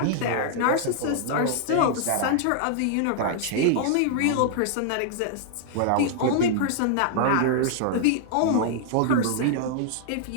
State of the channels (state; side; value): different; both; correlation -0.01